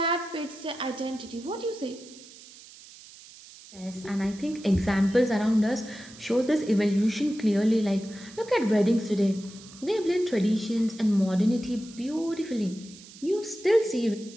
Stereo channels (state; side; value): noise; right; hiss, 20 dB below the sound